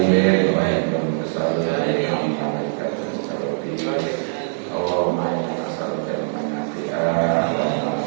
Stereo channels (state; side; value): silent; left; 64 dB below the other